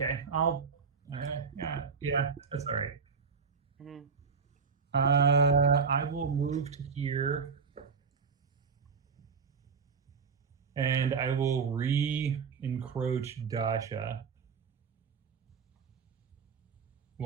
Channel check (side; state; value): left; quieter; 5.6 dB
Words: Yeah, that's all right. Mhm. I will move to here. And I will re-encroach Dasha.